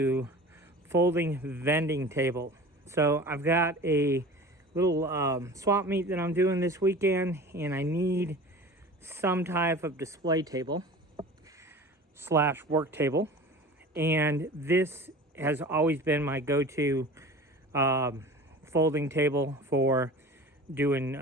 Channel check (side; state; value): both; normal; correlation 0.38